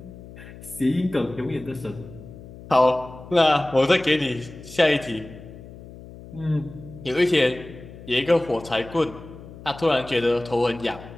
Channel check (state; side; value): noise; left; hum, 16 dB below the sound